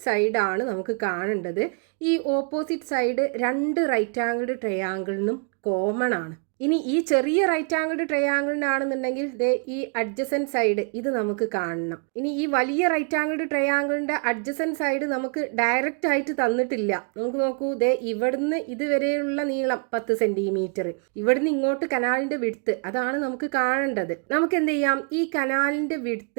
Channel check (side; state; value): left; quieter; 39.1 dB